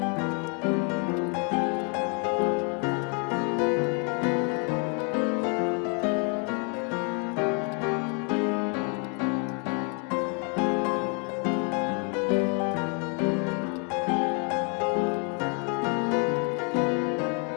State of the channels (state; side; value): quieter; right; 37.8 dB